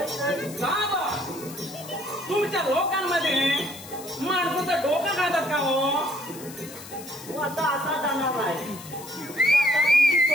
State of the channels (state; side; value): noise; left; hiss, 15 dB below the sound